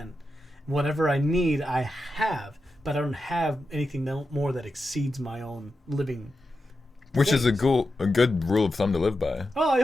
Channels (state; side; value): normal; both; correlation 0.90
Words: Whatever I need, I have, but I don't have anything more that exceeds my own living. Which is a things. good rule of thumb to live by. Oh, I